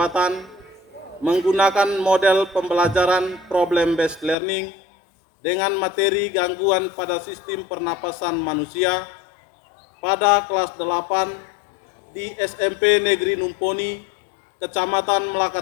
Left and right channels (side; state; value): right; drops out; at 4.4 s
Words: menggunakan model pembelajaran problem based learning dengan materi gangguan pada sistem pernapasan manusia pada kelas 8 di SMP Negeri Numponi, Kecamatan Melaka